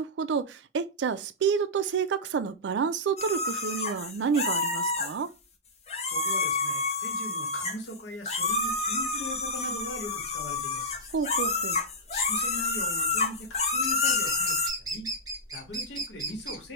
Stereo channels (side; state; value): both; normal; correlation -0.10